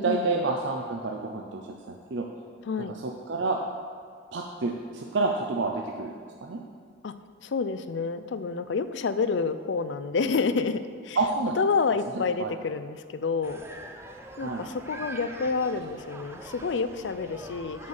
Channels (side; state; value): both; normal; correlation -0.17